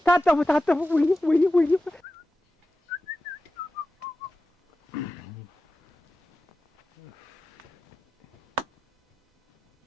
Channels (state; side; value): normal; both; correlation 0.93